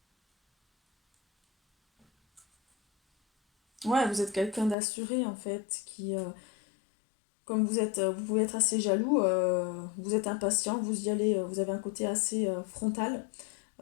Ouais, vous êtes quelqu'un d'assuré en fait, comme vous pouvez être assez jaloux, vous êtes impatient, vous y allez, vous avez un côté assez frontal,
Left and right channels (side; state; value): right; drops out; at 4.8 s